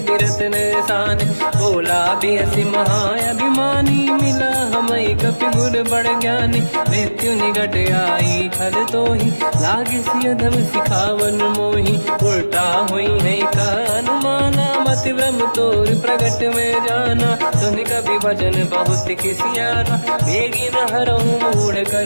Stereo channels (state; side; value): inverted; both; correlation -1.00